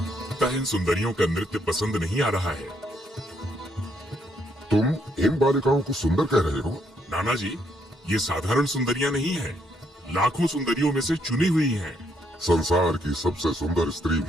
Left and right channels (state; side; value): normal; both; correlation 0.73